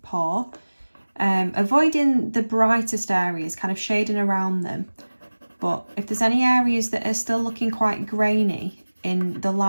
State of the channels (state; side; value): inverted; both; correlation -1.00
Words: paw. Avoiding the brightest areas, kind of shading around them, but if there's any areas that are still looking quite grainy in the